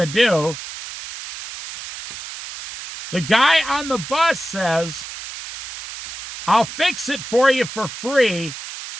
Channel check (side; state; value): right; noise; hiss, 11 dB below the sound